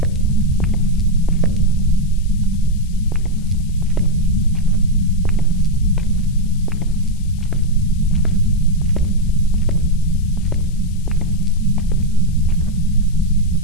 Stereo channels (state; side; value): noise; left; hiss, 25 dB below the sound